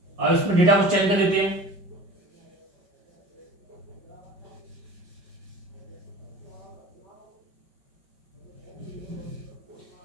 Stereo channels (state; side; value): late; left; 5.2 ms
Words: अब इसमें डेटा को चेंज कर देते हैं।